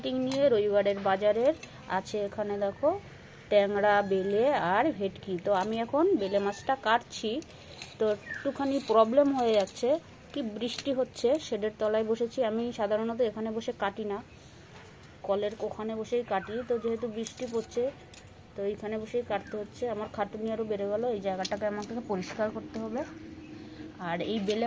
নিয়ে। রবিবারের বাজারের আছে এখানে দেখো ট্যাংরা, বেলে আর ভেটকি। তো আমি এখন বেলে মাছটা কাটছি। তো একটুখানি প্রবলেম হয়ে যাচ্ছে, কি বৃষ্টি হচ্ছে, শেডের তলায় বসেছি। আমি সাধারণত এখানে বসে কাটি না, কলের ওখানে বসেই কাটি। তো যেহেতু বৃষ্টি পড়ছে তো এইখানে বসেই কাটতে হচ্ছে। আমার খাটুনি আরও বেড়ে গেল। এই জায়গাটাকে আমাকে পরিষ্কার করতে হবে। আর এই বেলে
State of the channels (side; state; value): both; identical; correlation 1.00